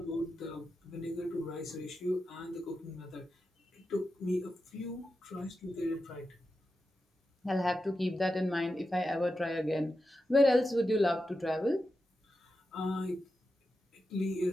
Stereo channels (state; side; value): normal; both; correlation 0.90